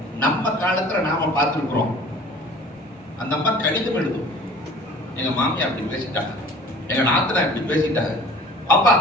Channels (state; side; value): normal; both; correlation 0.47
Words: நம்ம காலத்துல நாம பார்த்திருக்கிறோம். அந்த அம்மா கடிதம் எழுதும், எங்க மாமியா அப்படி பேசிட்டாங்க, எங்க நாத்தனா இப்படி பேசிட்டாங்க, அப்பா